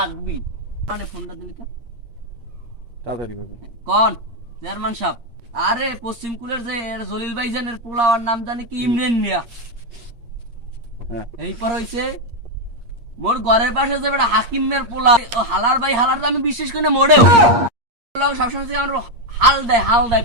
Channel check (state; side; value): late; left; 8.6 ms